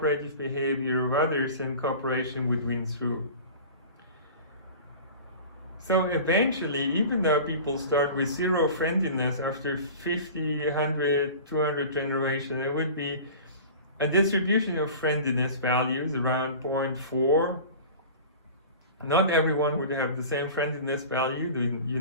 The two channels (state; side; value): inverted; both; correlation -0.38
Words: behavior of others, and cooperation would win through. So eventually, even though people start with zero friendliness, after 50, 100, 200 generations, there would be a distribution of friendliness values around 0.4. Not everyone would have the same friendliness value, you